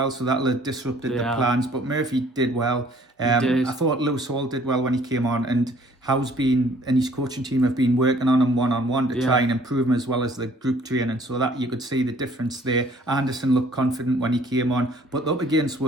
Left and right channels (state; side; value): normal; both; correlation 0.57